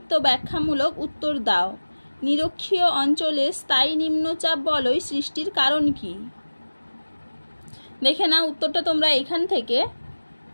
ব্যাখ্যামূলক উত্তর দাও। নিরক্ষীয় অঞ্চলে স্থায়ী নিম্নচাপ বলয় সৃষ্টির কারণ কি? দেখে নাও উত্তরটা তোমরা এখান থেকে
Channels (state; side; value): inverted; both; correlation -1.00